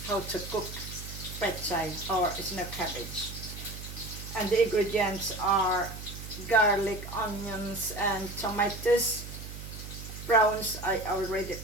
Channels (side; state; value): right; noise; hum, 11 dB below the sound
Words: how to cook. Pechay or snow cabbage. And the ingredients are garlic, onions, and tomatoes. Prawns, I already